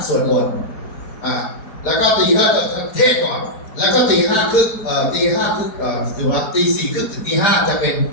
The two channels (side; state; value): right; late; 5.0 ms